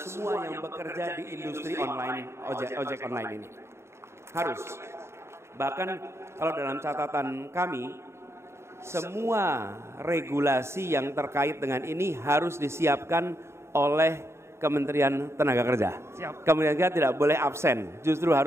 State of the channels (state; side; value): late; left; 0.13 ms